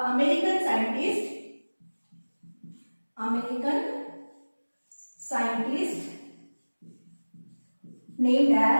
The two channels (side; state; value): both; inverted; correlation -1.00